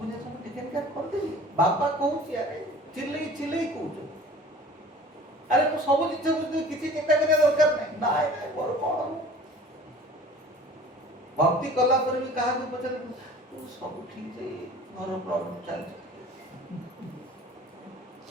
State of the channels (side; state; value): both; normal; correlation 0.45